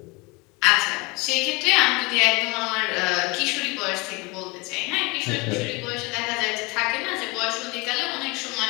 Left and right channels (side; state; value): right; quieter; 26.3 dB